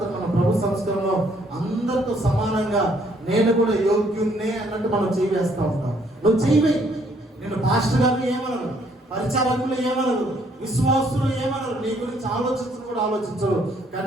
మనం ప్రభు సంస్కరణలో అందరితో సమానంగా నేను కూడా యోగ్యున్నే అన్నట్టు మనం చేయి వేస్తూ ఉంటాం. నువ్వు చేయవే, నేను పాస్టర్ గారిని ఏమనరు, పరిచారకులు ఏమనరు, విశ్వాసులు ఏమనరు, నీ గురించి కూడా ఆలోచించరు. కానీ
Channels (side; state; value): both; normal; correlation 0.66